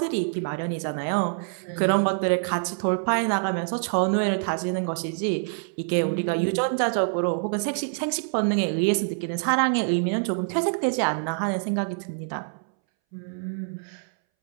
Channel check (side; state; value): left; silent; 61 dB below the other